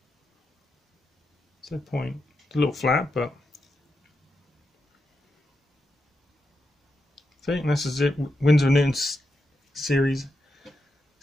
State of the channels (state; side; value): normal; both; correlation 0.86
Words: So point. It's a little flat, but see, and this is it. Winsor & Newton Series